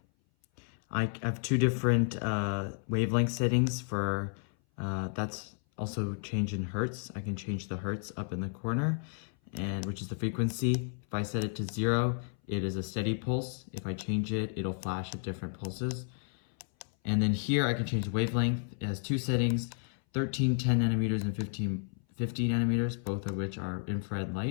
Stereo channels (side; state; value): right; silent; 56 dB below the other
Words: I have two different wavelength settings for, that's also change in hertz. I can change the hertz up in the corner, and which is the frequency. If I set it to 0, it is a steady pulse. If I change it, it'll flash at different pulses. And then here I can change the wavelength. It has two settings, 13 10 nanometers and 15 50 nanometers, both of which are infrared